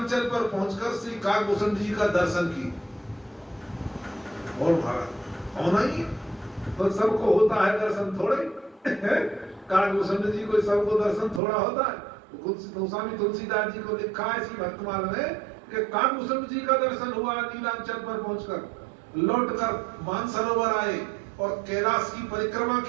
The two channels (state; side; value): drops out; left; at 11.4 s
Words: पर पहुंचकर श्री काकभूषण जी का दर्शन किए। और महाराज होना ही है, तो सबको होता है दर्शन थोड़े काकभूषण जी को सबको दर्शन थोड़ा होता है। गोस्वामी तुलसीदास जी को लिखा है इसी भक्तमाल में कि काकभूषण जी का दर्शन हुआ नीलांचल पर पहुंचकर, लौटकर मानसरोवर आए और कैलाश की परिक्रमा